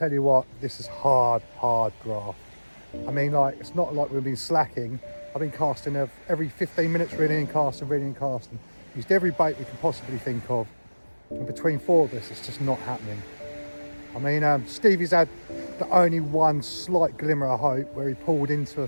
you what, this is hard graft. I mean, like, it's not like we've been slacking. I've been casting every 15 minutes, reeling and casting, reeling and casting. Used every bait we can possibly think of. And between 4 of us, it's just not happening. I mean, Stevie's had the only one slight glimmer of hope where he pulled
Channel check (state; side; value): inverted; both; correlation -1.00